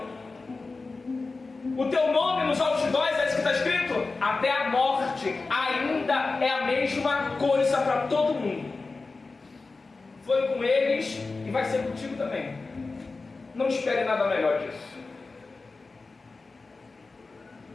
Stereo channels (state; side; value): quieter; right; 3.8 dB